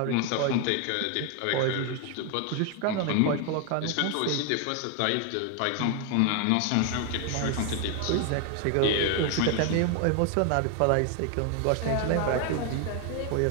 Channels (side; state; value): both; different; correlation 0.00